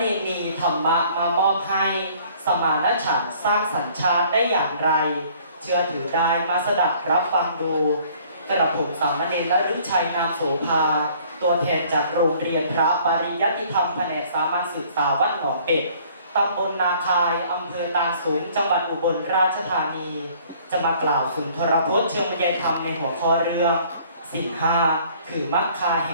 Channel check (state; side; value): inverted; both; correlation -0.57